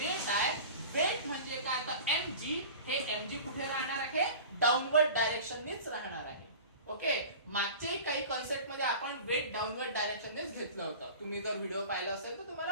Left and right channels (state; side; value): inverted; both; correlation -0.37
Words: आहे, वेट म्हणजे काय, तर mg, हे mg कुठे राहणार आहे, डाऊनवर्ड डायरेक्शननीच राहणार आहे. ओके, मागचे काही कन्सेप्ट मध्ये आपण वेट डाऊनवर्ड डायरेक्शननेच घेतलं होतं. तुम्ही जर व्हिडिओ पाहिला असेल तर तुम्हाला